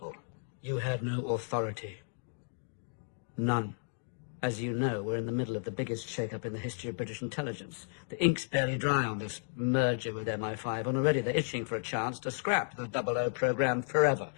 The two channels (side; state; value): right; silent; digital silence